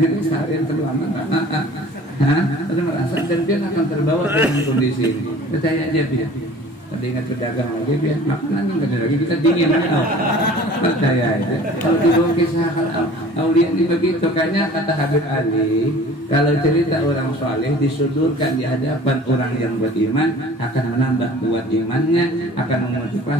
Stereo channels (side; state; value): both; normal; correlation 0.46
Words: seharian terlama. Ada merasa dan dia akan terbawa dengan kondisi ini. Percaya aja dia. Tadi ingat pedagang lagi dia makanan nggak lagi kita dingin kan? Percaya aja. Kalau dibawa kisah aulia ini begitu, kayaknya kata Habib Ali, kalau cerita orang soleh disodorkan di hadapan orang yang beriman akan menambah kuat imannya, akan